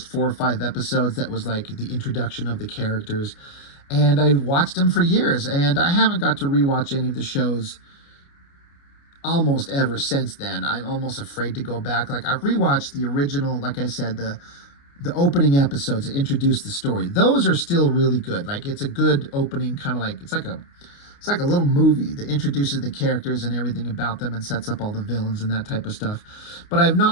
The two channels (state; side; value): late; right; 29 ms